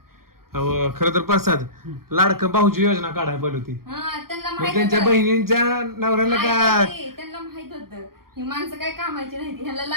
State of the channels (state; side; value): late; left; 0.93 ms